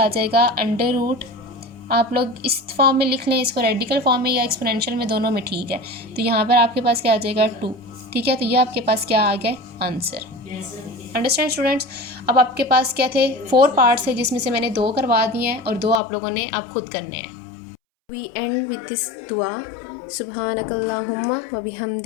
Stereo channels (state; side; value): drops out; right; at 16.0 s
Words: आ जाएगा, √। आप लोग इस फॉर्म में लिख लें, इसको रेडिकल फॉर्म में या एक्सपोनेंशियल में, दोनों में ठीक है। तो यहाँ पर आपके पास क्या आ जाएगा, 2, ठीक है। तो ये आपके पास क्या आ गया, आंसर। Understand students. अब आपके पास क्या थे, 4 पार्ट्स है, जिसमें से मैंने 2 करवा दिए हैं और 2 आप लोगों ने अब खुद करने हैं। We end with this dua. Subhanakallahumma wa